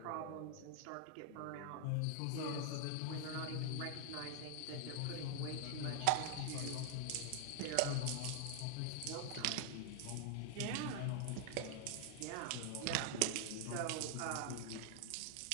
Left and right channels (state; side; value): different; both; correlation 0.00